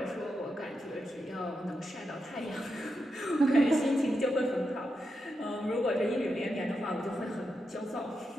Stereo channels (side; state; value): both; normal; correlation 0.86